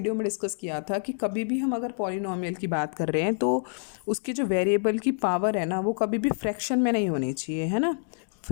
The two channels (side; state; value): right; silent; digital silence